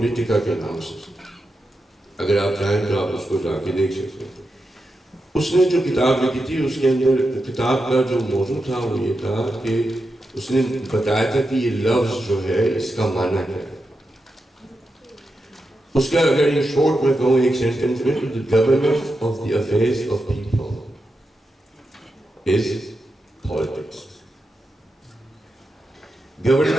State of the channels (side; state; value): both; normal; correlation 0.88